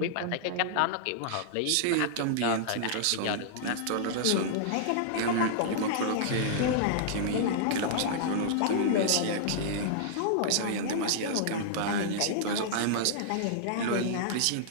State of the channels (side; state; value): both; different; correlation -0.02